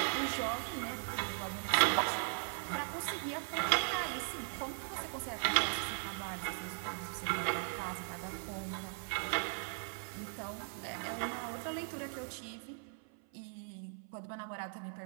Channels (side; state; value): left; silent; 52 dB below the other